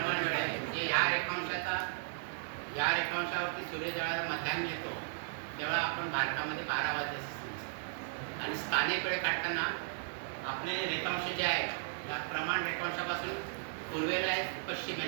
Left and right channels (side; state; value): left; silent; 54 dB below the other